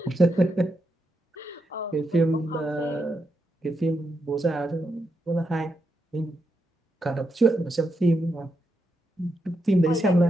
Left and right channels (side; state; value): both; normal; correlation 0.83